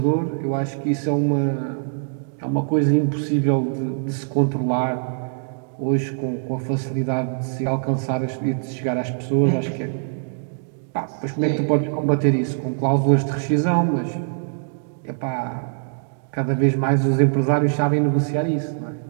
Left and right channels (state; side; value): silent; left; digital silence